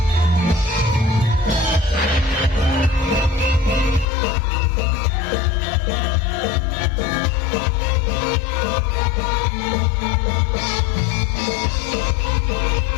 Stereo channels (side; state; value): right; drops out; at 4.0 s